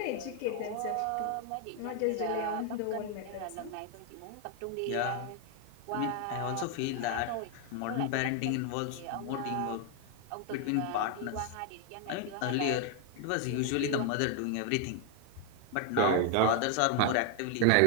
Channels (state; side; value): different; both; correlation 0.00